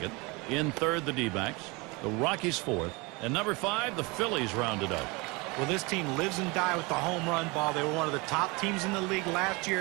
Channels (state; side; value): quieter; left; 26.4 dB